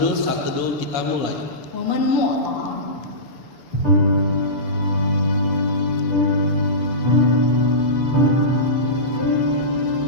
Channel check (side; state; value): right; late; 6.9 ms